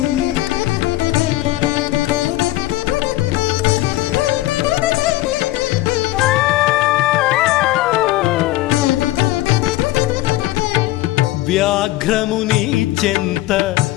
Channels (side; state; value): right; quieter; 16.9 dB